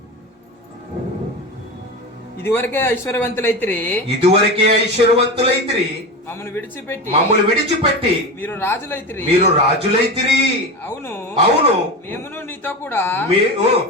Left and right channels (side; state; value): both; normal; correlation 0.24